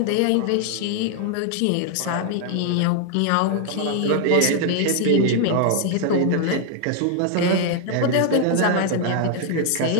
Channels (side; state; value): both; different; correlation 0.00